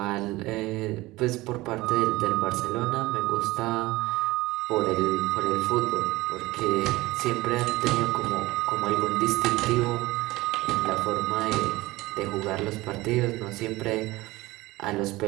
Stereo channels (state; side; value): quieter; left; 19.6 dB